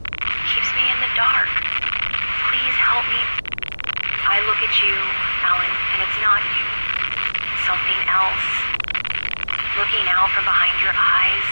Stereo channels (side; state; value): both; inverted; correlation -1.00